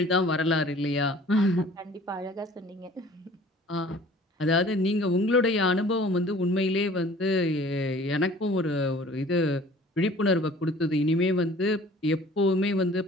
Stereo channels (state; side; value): normal; both; correlation 0.50